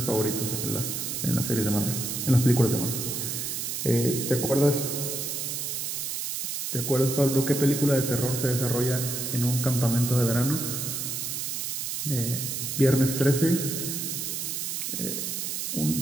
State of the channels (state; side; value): noise; right; hiss, 3 dB below the sound